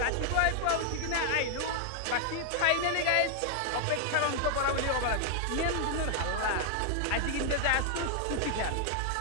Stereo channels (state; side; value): different; both; correlation 0.00